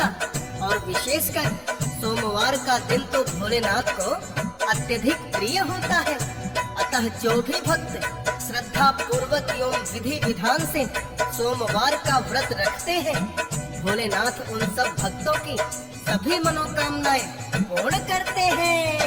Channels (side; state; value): both; identical; correlation 1.00